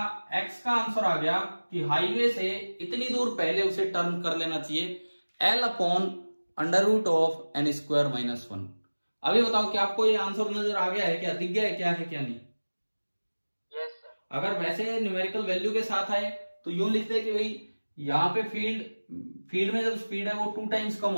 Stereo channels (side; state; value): both; inverted; correlation -1.00